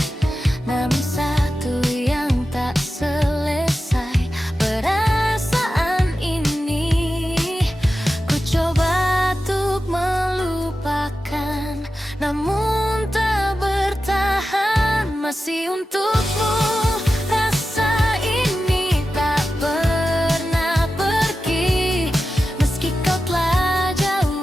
namun satu yang tak selesai, perasaan ini ku coba untuk melupakan, namun tak bertahan. Masih untukmu rasa ini tak pernah pergi, meski kau telah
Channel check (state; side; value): normal; both; correlation 0.92